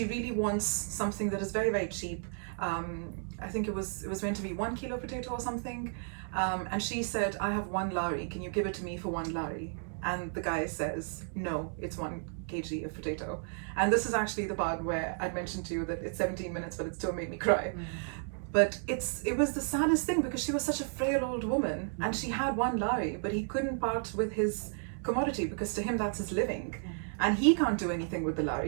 really wants something that is very, very cheap. I think it was meant to be 1 kilo potato or something. And she said, "I have 1 lari, can you give it to me for 1 lari?" And the guy says, "No, it's 1 kg of potato." And this is actually the part where I'd mentioned to you that it's 17 minutes, but it still made me cry. But it was the saddest thing, because she was such a frail old woman, and she had 1 lari, but he couldn't part with his commodity, because to him that's his living. And he can't do anything with the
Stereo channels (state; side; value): silent; left; 56 dB below the other